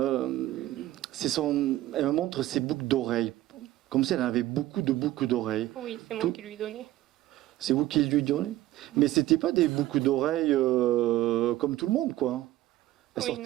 me montre ses boucles d'oreilles. Comme si elle avait beaucoup de boucles d'oreilles. Oui, c'est moi qui lui donnais. C'est vous qui lui donnez? Mais c'était pas des boucles d'oreilles comme tout le monde, quoi.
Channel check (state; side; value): quieter; left; 15.3 dB